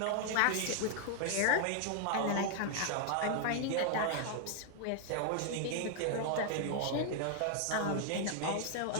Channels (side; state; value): both; different; correlation 0.00